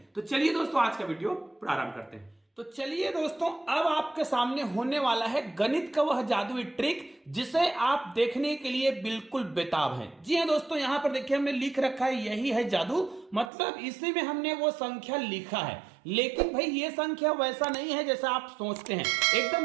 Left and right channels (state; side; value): drops out; left; at 13.5 s